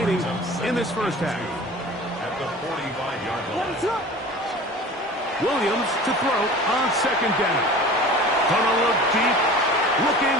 in this first half. At the 45-yard line. Williams to throw on second down. Gonna look deep, looking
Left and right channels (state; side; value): normal; both; correlation 0.40